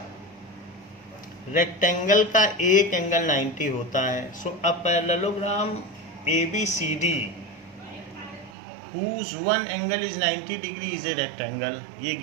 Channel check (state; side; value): drops out; left; at 8.5 s